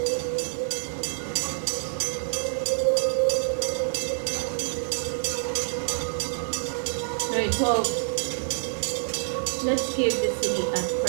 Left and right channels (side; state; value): left; silent; digital silence